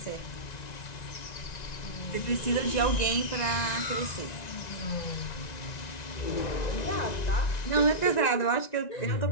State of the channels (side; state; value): right; late; 1.9 ms